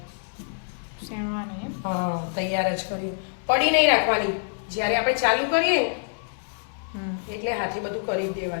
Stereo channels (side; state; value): right; silent; digital silence